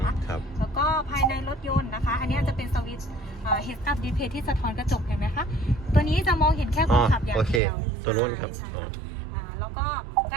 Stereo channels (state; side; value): drops out; left; at 7.6 s